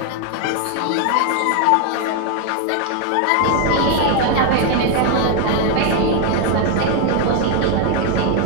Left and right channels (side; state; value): both; different; correlation 0.01